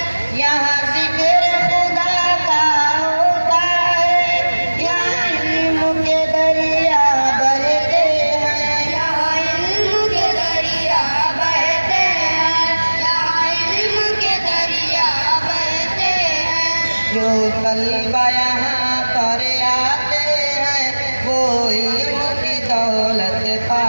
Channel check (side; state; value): both; inverted; correlation -1.00